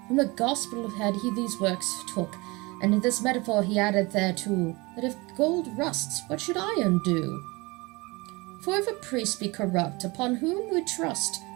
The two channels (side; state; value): left; quieter; 24.8 dB